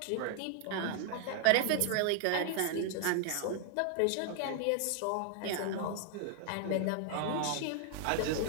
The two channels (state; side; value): different; both; correlation 0.00